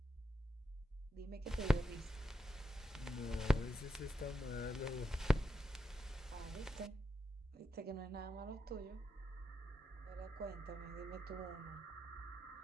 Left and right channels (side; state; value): both; normal; correlation 0.85